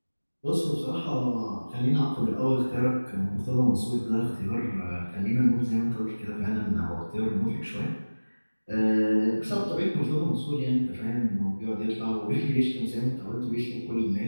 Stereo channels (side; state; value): both; inverted; correlation -1.00